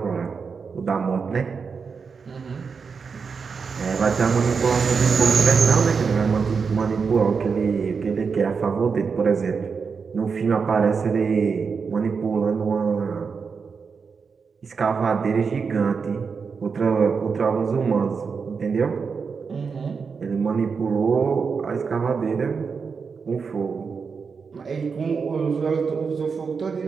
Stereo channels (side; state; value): left; quieter; 5.5 dB